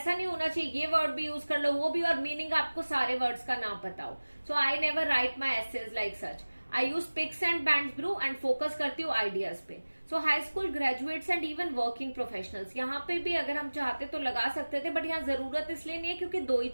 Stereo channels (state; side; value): inverted; both; correlation -1.00